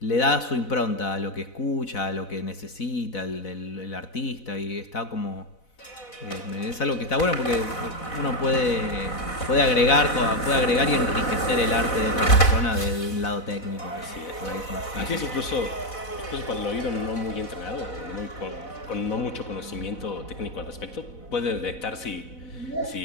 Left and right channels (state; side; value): late; right; 4.0 ms